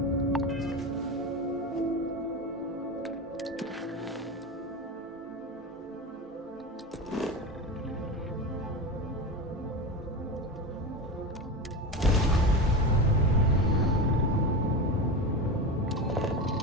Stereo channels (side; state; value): both; normal; correlation 0.23